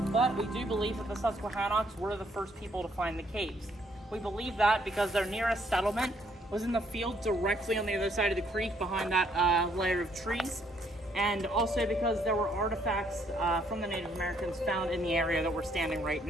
but we do believe that the Susquehannocks were the first people to find the caves. We believe that because their nearest settlement was in the field directly on the other side of the creek behind that layer of trees, and also because there were artifacts from the Native Americans found in the area that we're standing right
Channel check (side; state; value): both; normal; correlation 0.69